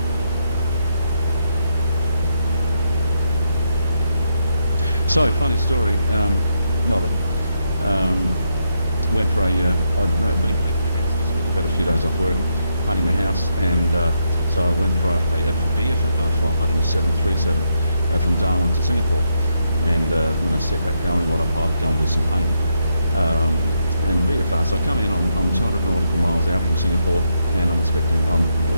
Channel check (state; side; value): inverted; both; correlation -0.80